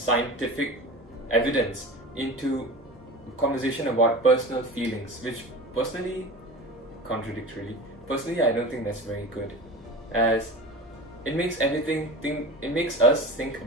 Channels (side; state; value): both; normal; correlation 0.33